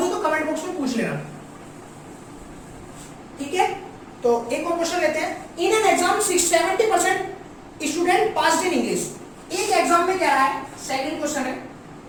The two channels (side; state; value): both; identical; correlation 1.00